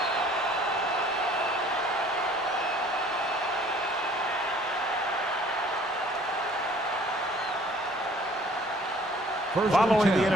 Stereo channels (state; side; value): normal; both; correlation 0.54